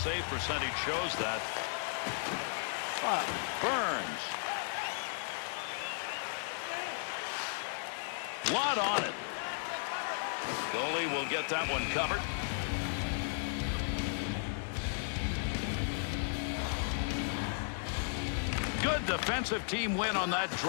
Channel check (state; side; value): silent; right; digital silence